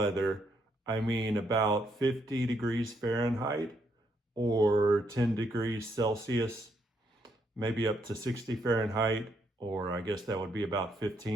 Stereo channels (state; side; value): normal; both; correlation 0.75